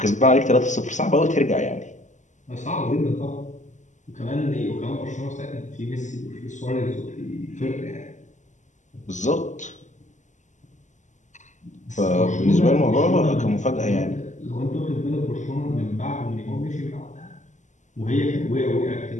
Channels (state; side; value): late; right; 0.35 ms